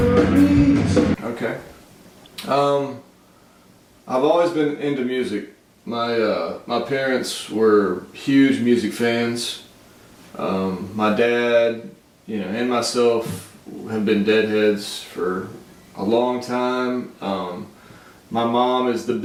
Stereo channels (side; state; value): both; identical; correlation 1.00